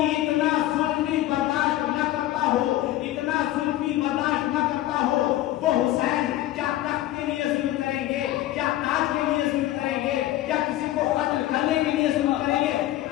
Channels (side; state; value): right; quieter; 14.9 dB